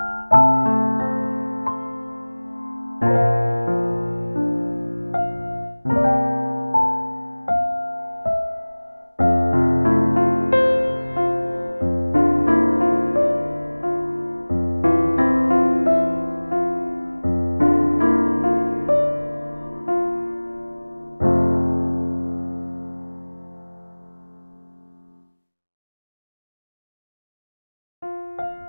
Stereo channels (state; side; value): inverted; both; correlation -1.00